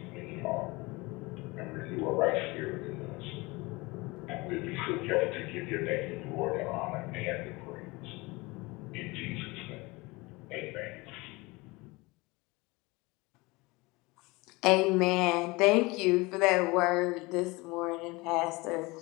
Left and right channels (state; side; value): quieter; right; 23.7 dB